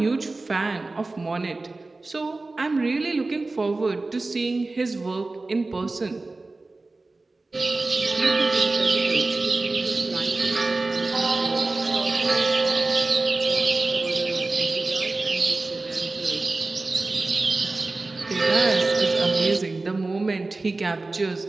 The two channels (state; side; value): quieter; left; 3.3 dB